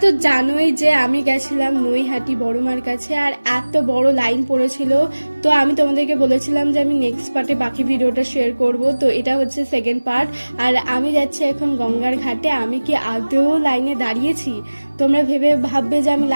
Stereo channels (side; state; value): both; inverted; correlation -1.00